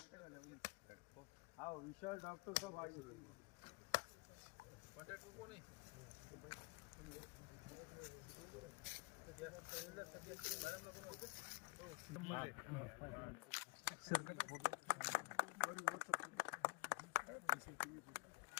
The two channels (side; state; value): right; quieter; 28.8 dB